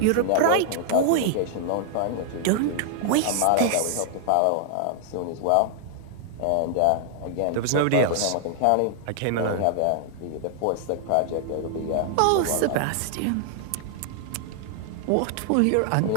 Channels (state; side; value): different; both; correlation 0.00